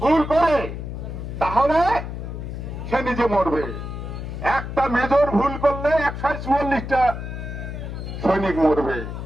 ভুল করে তাহলে সে নিজে মরবে। একটা মেজর ভুল করলে 144টা সৈনিক মরবে।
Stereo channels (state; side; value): noise; left; hum, 7 dB below the sound